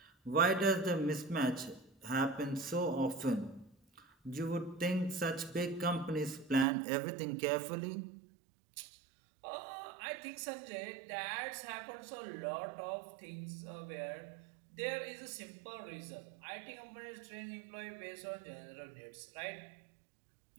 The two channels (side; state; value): left; drops out; at 6.7 s